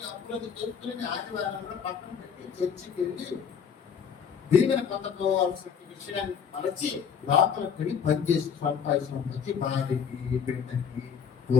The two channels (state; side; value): quieter; right; 7.2 dB